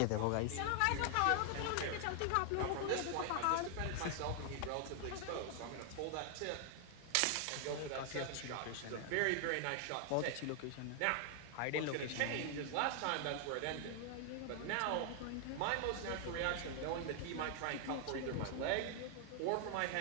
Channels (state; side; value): different; both; correlation 0.00